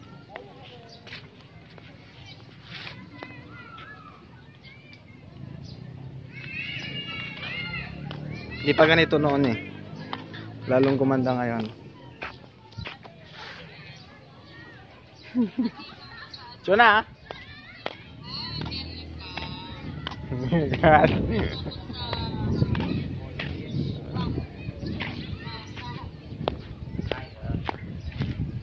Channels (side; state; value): both; identical; correlation 1.00